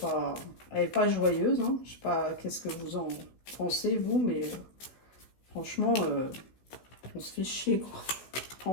est pas joyeuse. Hein. Je sais pas qu'est-ce que vous en pensez, vous, mais franchement, on se fait chier, quoi.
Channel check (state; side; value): late; right; 16 ms